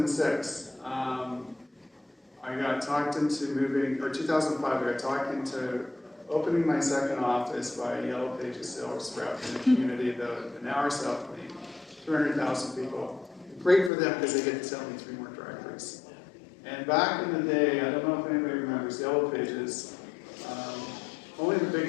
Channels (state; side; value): drops out; right; at 13.9 s